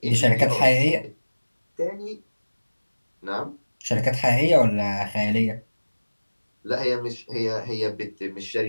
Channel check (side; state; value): both; inverted; correlation -1.00